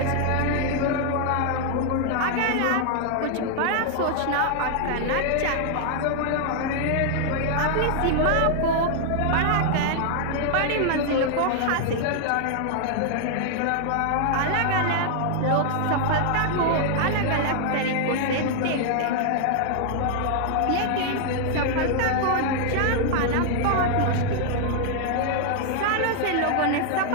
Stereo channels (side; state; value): both; different; correlation 0.00